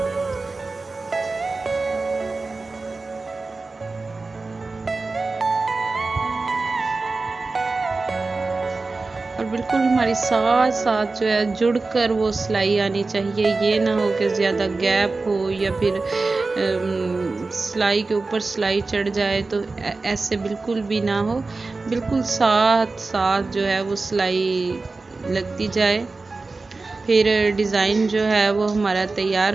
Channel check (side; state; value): left; quieter; 3.7 dB